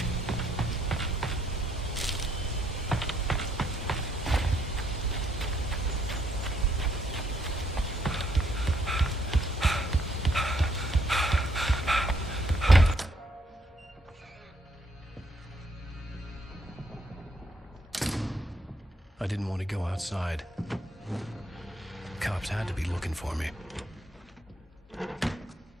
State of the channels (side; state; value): both; normal; correlation 0.71